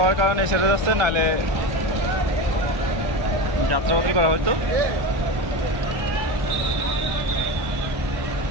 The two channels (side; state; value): left; late; 1.3 ms